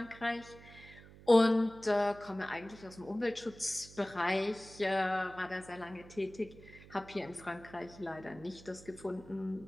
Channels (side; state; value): right; noise; hum, 19 dB below the sound